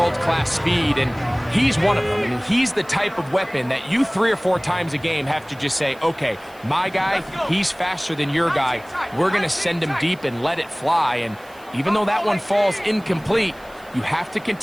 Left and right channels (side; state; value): right; noise; hiss, 26 dB below the sound